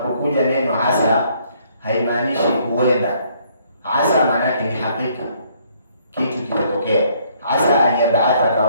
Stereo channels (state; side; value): inverted; both; correlation -0.65